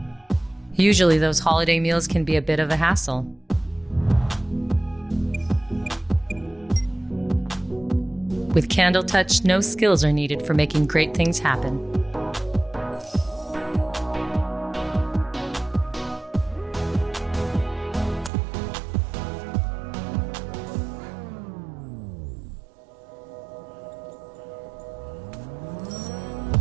Usually those holiday meals can be a bit of a hassle. With Candle Touch, no skills are needed for making great things happen.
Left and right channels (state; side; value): drops out; left; at 18.3 s